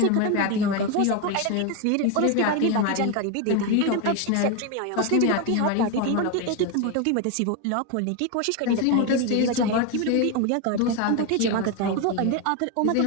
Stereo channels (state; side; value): different; both; correlation 0.02